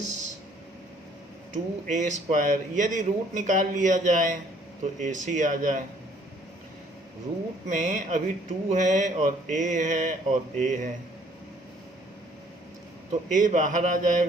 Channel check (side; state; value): both; normal; correlation 0.60